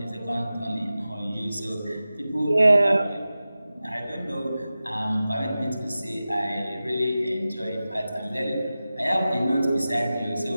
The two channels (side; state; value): both; inverted; correlation -0.95